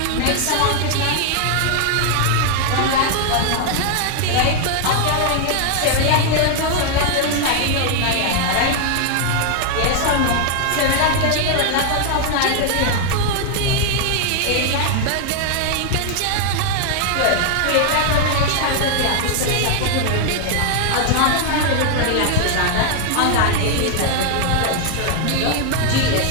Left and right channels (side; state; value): both; different; correlation 0.00